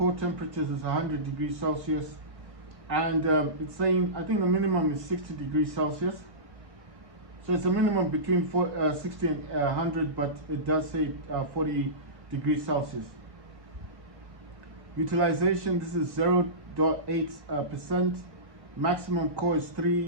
temperatures is 100 degrees Celsius. And it's saying, I think the minimum is 60 degrees Celsius. So it's a minimum between 60 and 100, but it does say 40 degrees Celsius. Utilization, this is 0.8%. Maximum core is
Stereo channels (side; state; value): left; late; 1.6 ms